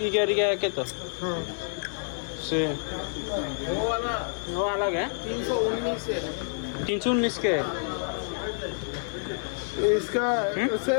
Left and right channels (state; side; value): silent; right; digital silence